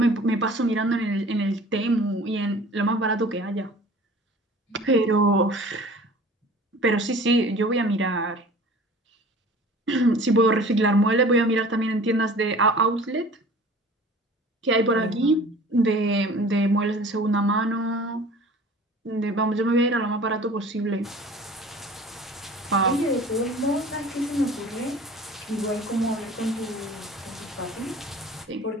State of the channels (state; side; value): normal; both; correlation 0.45